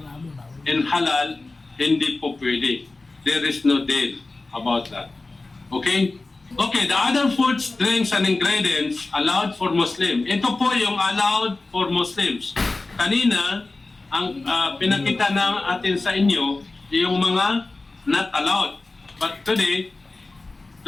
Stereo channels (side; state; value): right; quieter; 3.3 dB